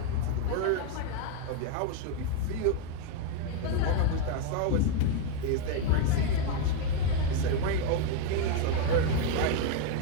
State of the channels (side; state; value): both; different; correlation 0.01